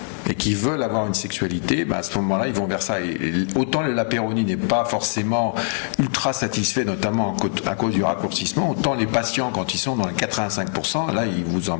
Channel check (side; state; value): right; silent; 62 dB below the other